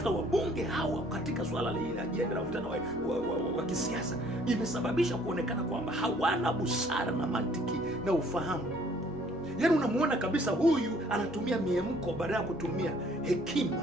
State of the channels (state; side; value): normal; both; correlation 0.59